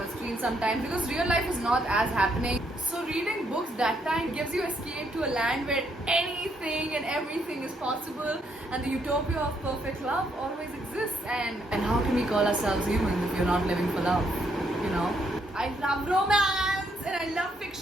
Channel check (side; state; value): both; normal; correlation 0.73